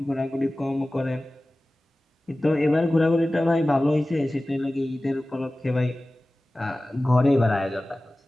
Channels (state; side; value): normal; both; correlation 0.97